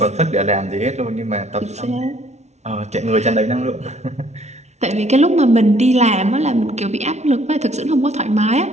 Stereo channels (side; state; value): left; late; 0.32 ms